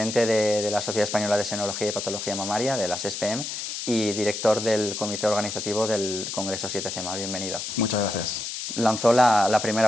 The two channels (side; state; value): left; noise; hiss, 5 dB below the sound